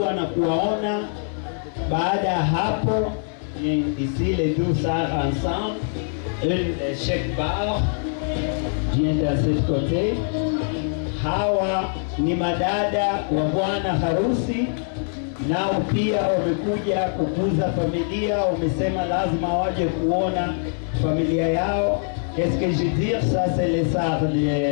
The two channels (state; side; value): silent; right; digital silence